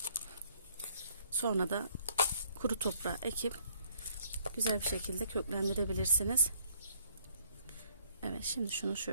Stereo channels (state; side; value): inverted; both; correlation -0.66